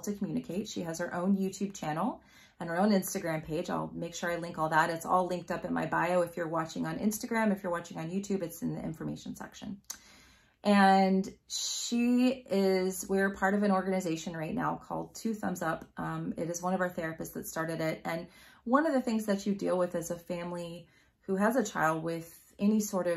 communicate. She has her own YouTube channel and her own Instagram page. I'll make sure I link all that. It's all linked up in my bio. If you're watching on Instagram, if you're watching on YouTube, it's in the information section. And we're part of an organization right now called Two Thumbs Up. It is one of our therapists that started it. And one of the things that you deal with as a family who has a child with any sort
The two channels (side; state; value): both; identical; correlation 1.00